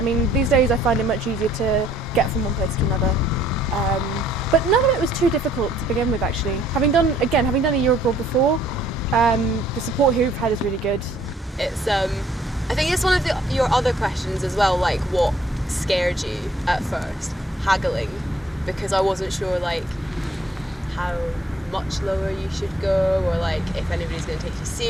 mean, these days I find it much easier to get from one place to another. Um, but none of it was too difficult to begin with, actually. Having done a year abroad before, the support here we've had is really good. It's I think it's one of your other questions as well, like what scared you at first, haggling, because I wasn't sure like how much lower you should go or like if anybody's going to take you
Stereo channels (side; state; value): both; normal; correlation 0.63